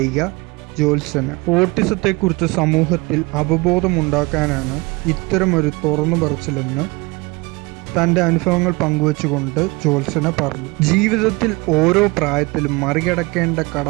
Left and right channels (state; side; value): quieter; left; 25.2 dB